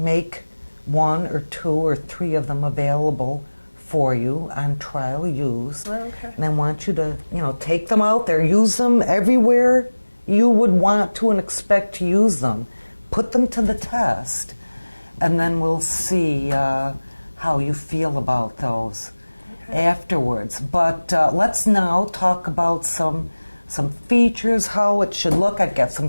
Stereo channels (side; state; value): both; inverted; correlation -1.00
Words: 1 or 2 or 3 of them available for you on trial use. And I want you to take them out there, use them everywhere you would want to and expect to use them, put them to the test, and then we'll see how you feel about those afterwards. But let's now talk about some features, how it should look. I've got